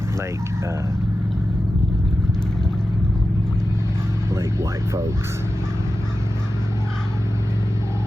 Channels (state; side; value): normal; both; correlation 0.93